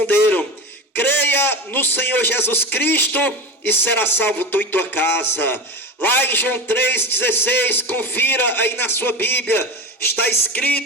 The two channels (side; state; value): both; normal; correlation 0.26